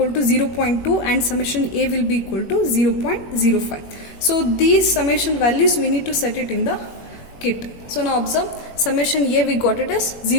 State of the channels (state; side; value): late; right; 21 ms